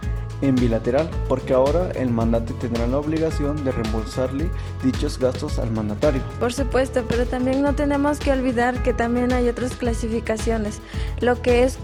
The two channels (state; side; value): identical; both; correlation 1.00